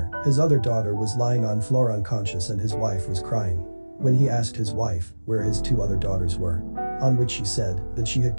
His other daughter was lying on floor unconscious and his wife was crying. When he asked his wife where his 2 other daughters were, on which she said that she had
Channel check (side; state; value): both; inverted; correlation -1.00